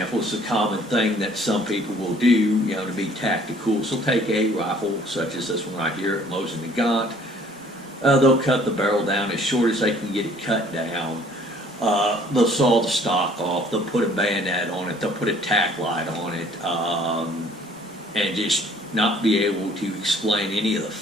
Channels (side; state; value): both; normal; correlation 0.57